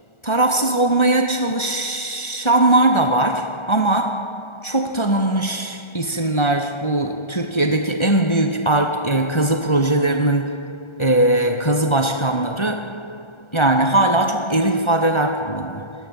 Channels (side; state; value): right; late; 1.4 ms